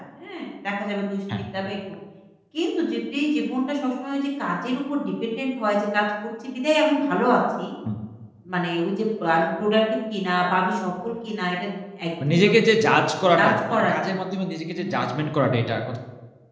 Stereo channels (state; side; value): identical; both; correlation 1.00